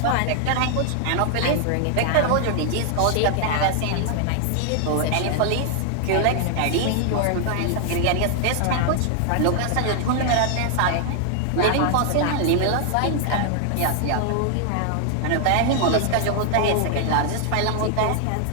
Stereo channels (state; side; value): different; both; correlation 0.00